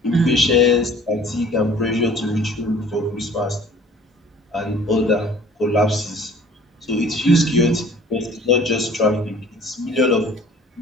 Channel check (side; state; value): both; normal; correlation 0.50